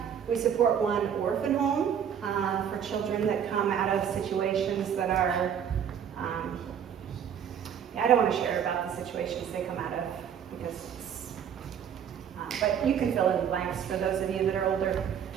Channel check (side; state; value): left; quieter; 8.4 dB